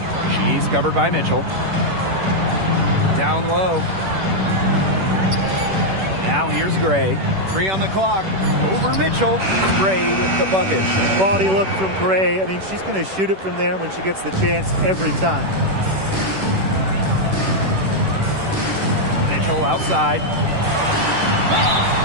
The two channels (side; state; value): left; late; 10 ms